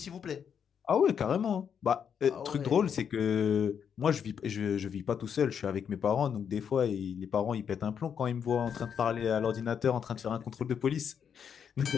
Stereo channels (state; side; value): quieter; right; 7.6 dB